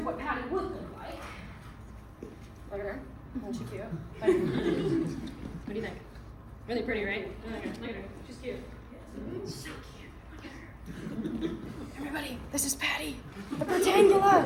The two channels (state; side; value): identical; both; correlation 1.00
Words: what Patty would look like. Look at her. Isn't she cute? What do you think? Really pretty, right? Look at her. She's cute. So cute. Look at her. Everybody, this is Patty, the protangula.